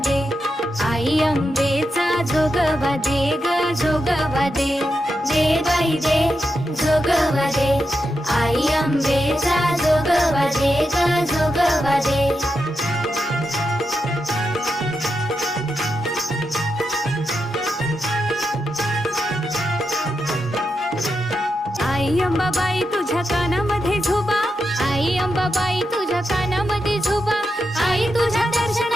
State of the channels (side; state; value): both; normal; correlation 0.87